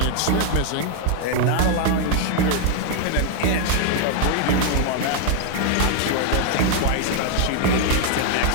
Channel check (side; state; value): both; different; correlation 0.00